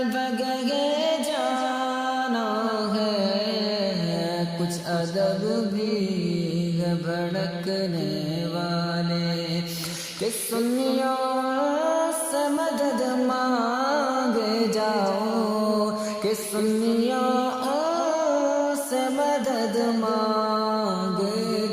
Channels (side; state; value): both; identical; correlation 1.00